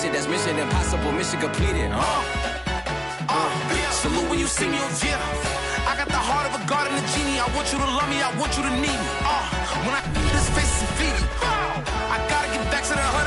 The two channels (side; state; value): both; identical; correlation 1.00